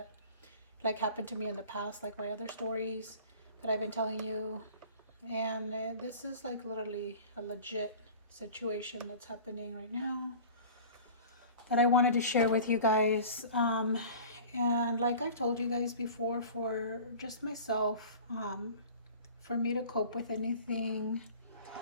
happened to me in the past, like my other stories that I've been telling you. And this is literally a legit situation that's happening right now that I wanted to share with you guys. And like I've told you guys before, for just myself, for me to cope with anything,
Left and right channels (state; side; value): inverted; both; correlation -0.41